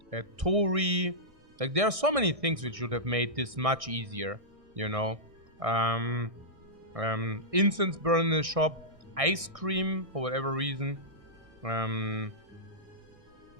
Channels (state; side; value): late; left; 1.6 ms